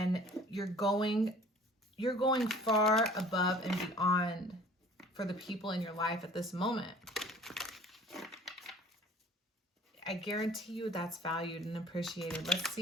you're going far above and beyond for the people in your life at this moment. I guarantee you that's valued and appreciated. Let's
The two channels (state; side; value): normal; both; correlation 0.49